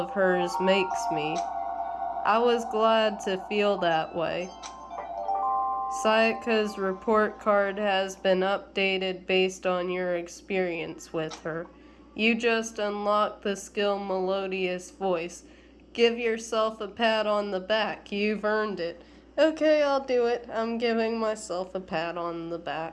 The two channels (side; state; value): both; identical; correlation 1.00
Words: hers makes me. I was glad to feel that way. Sayaka's report card has been updated based on your experience with her. You just unlocked the skill Melodious Voice. Give yourself a pat on the back. You've earned it. Okay, I'll do it. I'm giving myself a pat on the